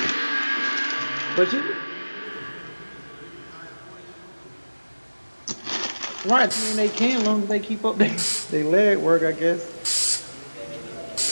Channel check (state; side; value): inverted; both; correlation -1.00